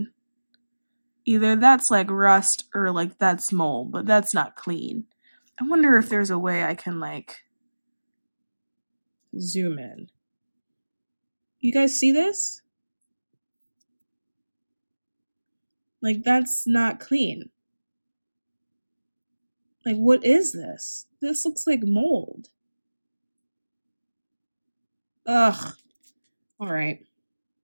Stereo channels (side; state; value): both; inverted; correlation -1.00